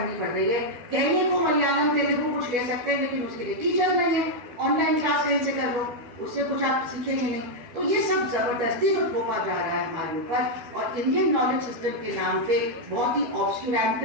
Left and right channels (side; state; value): left; late; 12 ms